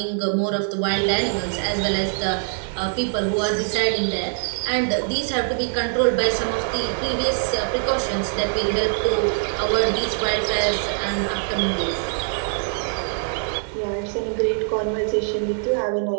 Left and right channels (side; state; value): left; silent; 63 dB below the other